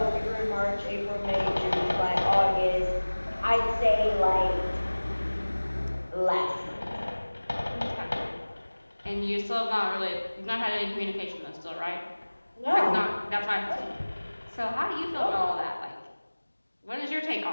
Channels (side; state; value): both; inverted; correlation -1.00